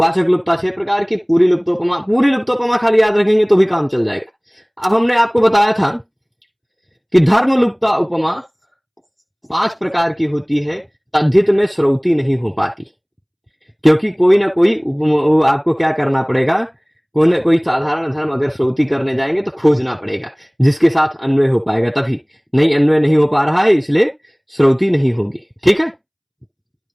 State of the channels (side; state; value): both; identical; correlation 1.00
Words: लुप्तता 6 प्रकार की, पूरी लुप्तोपमा खाली याद रखेंगे तो भी काम चल जाएगा। अब हमने आपको बताया था कि धर्म लुप्तता उपमा 5 प्रकार की होती है, तद्धित में श्रौती नहीं हो पाती, क्योंकि कोई ना कोई आपको क्या करना पड़ेगा, कोई ना कोई साधारण धर्म अगर श्रौती करने जाएंगे तो खोजना पड़ेगा जिसके साथ अन्वय हो पाएगा, तभी। नहीं, अन्वय नहीं हो पा रहा है इसलिए श्रौती नहीं होगी। ठीक है,